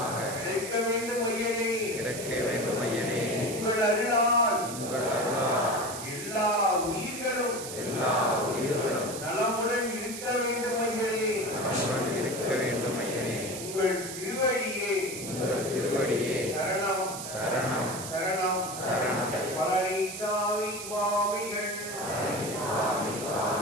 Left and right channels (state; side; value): noise; right; hiss, 9 dB below the sound